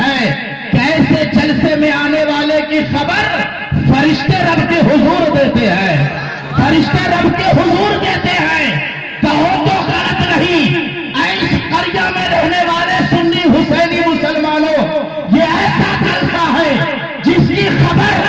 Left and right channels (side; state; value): both; identical; correlation 1.00